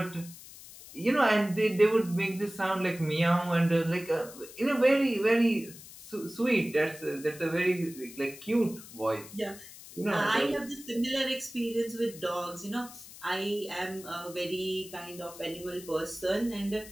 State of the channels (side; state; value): left; noise; hiss, 17 dB below the sound